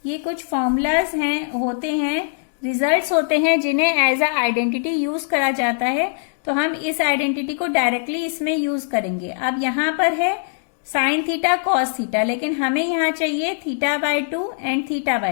ये कुछ फॉर्मूलाज हैं होते हैं, रिजल्ट्स होते हैं जिन्हें एज अ आइडेंटिटी यूज करा जाता है, तो हम इस आइडेंटिटी को डायरेक्टली इसमें यूज करेंगे। अब यहाँ पर है साइन थीटा कॉस थीटा, लेकिन हमें यहाँ चाहिए theta by 2 and theta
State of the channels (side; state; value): right; silent; digital silence